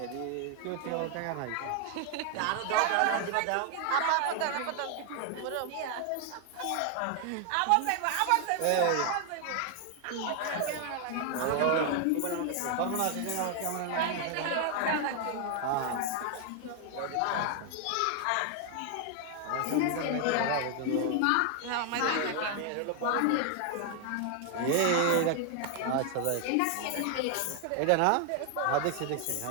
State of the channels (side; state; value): both; different; correlation 0.00